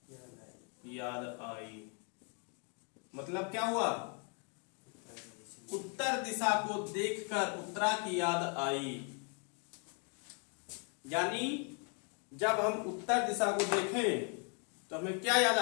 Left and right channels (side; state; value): right; quieter; 37.7 dB